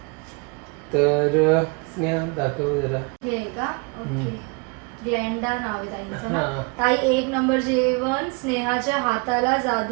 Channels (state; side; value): quieter; left; 32.1 dB